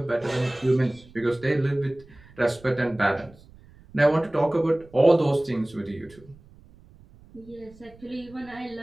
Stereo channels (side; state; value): right; noise; rumble, 24 dB below the sound